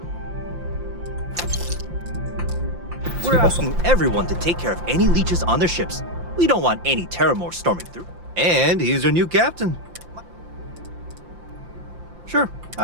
We're asking everyone to take care of any leeches on their ships. We don't want any Terramore storming through. And he's our new captain. Sure,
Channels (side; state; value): left; late; 5.8 ms